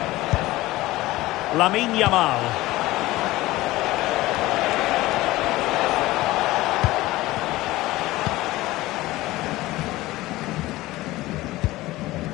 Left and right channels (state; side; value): quieter; right; 18.2 dB